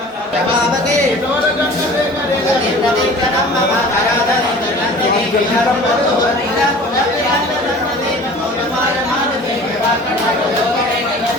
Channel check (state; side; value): normal; both; correlation 0.43